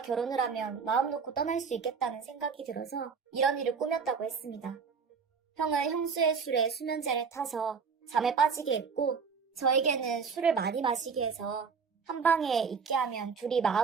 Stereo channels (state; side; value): quieter; left; 5.7 dB